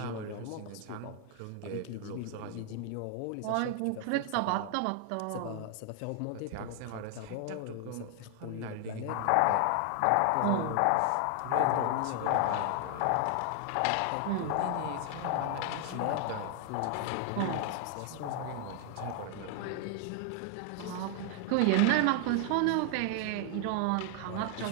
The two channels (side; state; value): both; different; correlation 0.00